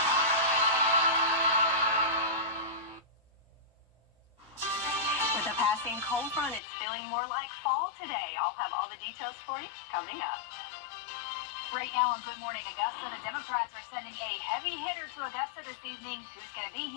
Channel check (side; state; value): right; drops out; at 6.6 s